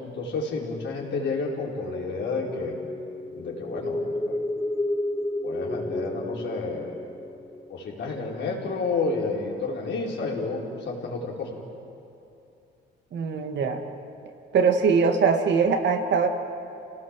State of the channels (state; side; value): normal; both; correlation 0.34